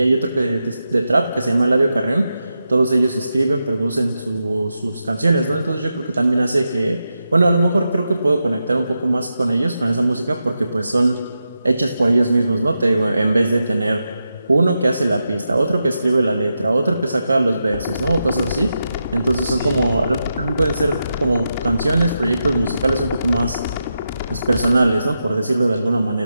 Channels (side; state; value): both; inverted; correlation -0.88